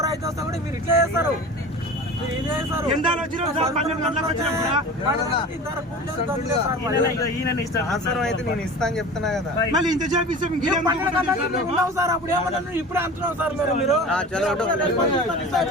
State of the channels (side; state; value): both; normal; correlation 0.36